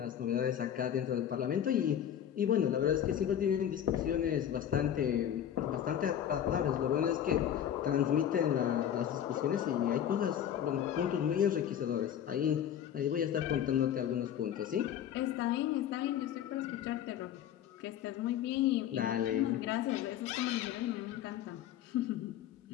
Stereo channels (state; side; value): quieter; right; 10.0 dB